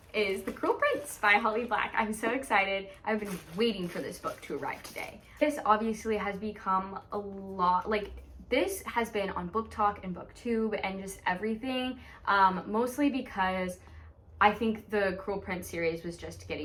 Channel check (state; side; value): identical; both; correlation 1.00